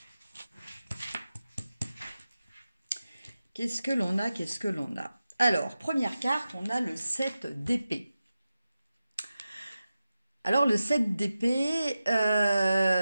? Qu'est-ce que l'on a? Qu'est-ce que l'on a? Alors, première carte, on a le 7 d'épée. Alors, le 7 d'épée,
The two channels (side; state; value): both; inverted; correlation -0.93